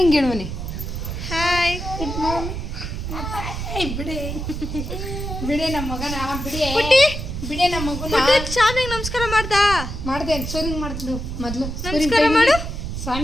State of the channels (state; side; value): noise; right; rumble, 5 dB below the sound